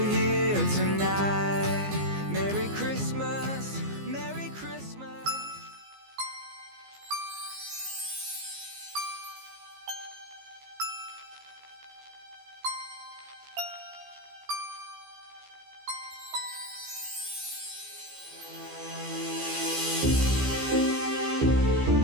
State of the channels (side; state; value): left; late; 15 ms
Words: here tonight. Merry Christmas, Merry Christmas.